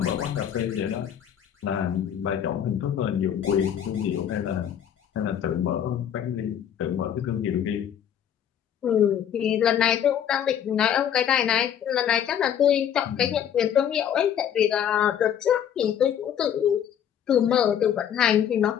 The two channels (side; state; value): right; quieter; 9.4 dB